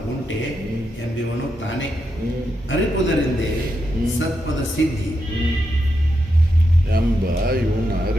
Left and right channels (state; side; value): normal; both; correlation 0.84